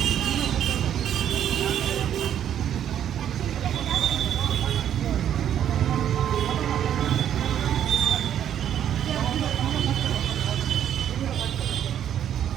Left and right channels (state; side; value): quieter; left; 10.0 dB